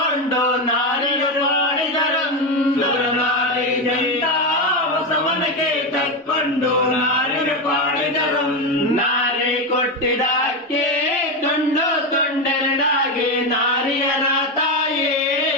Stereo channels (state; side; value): normal; both; correlation 0.12